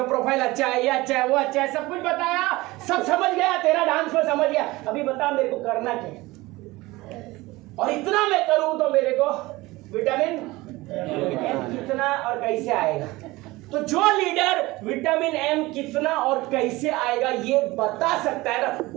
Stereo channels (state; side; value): quieter; left; 20.4 dB